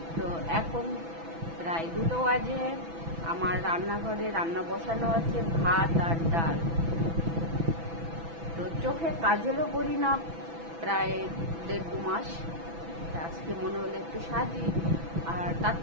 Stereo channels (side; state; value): left; late; 6.0 ms